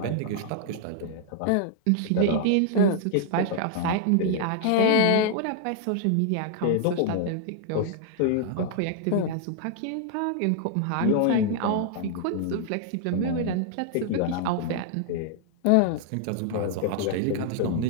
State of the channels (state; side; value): different; both; correlation -0.01